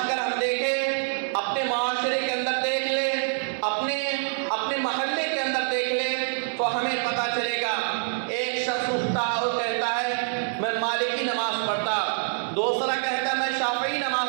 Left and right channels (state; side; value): silent; left; digital silence